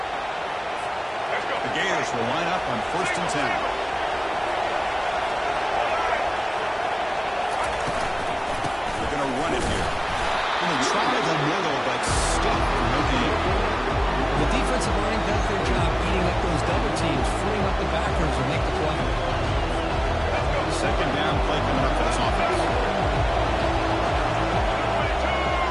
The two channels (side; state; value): both; identical; correlation 1.00